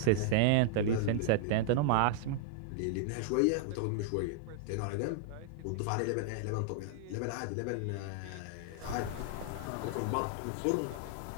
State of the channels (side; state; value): both; different; correlation -0.01